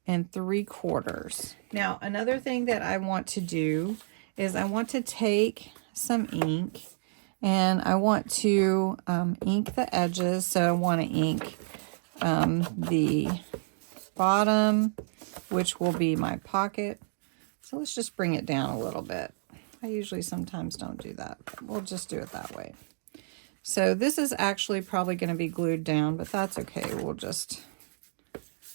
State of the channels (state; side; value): silent; left; digital silence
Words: 3/4. Now, another thing that I want to do is I want to take some ink, and I want to ink the edges. So I want to ink the bottom, which will be my pocket. So let's just bring it down a little bit. I usually sometimes don't do that, but we'll just do it that way. So this is actually probably going to be glued down, but that's okay. We'll just,